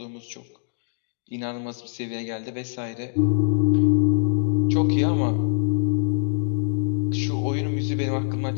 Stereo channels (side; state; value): right; silent; digital silence